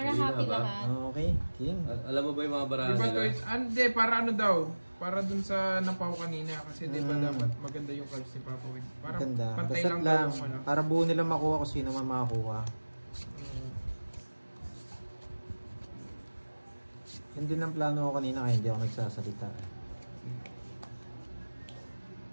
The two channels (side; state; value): both; inverted; correlation -1.00